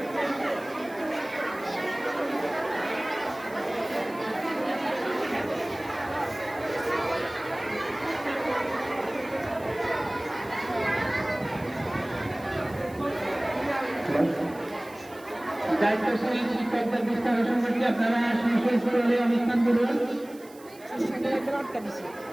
দায়িত্বশীল শিক্ষকদের দৃষ্টি আকর্ষণ করছি, আপনারা সুস্থলে অনুষ্ঠান করুন।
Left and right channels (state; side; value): noise; right; hiss, 23 dB below the sound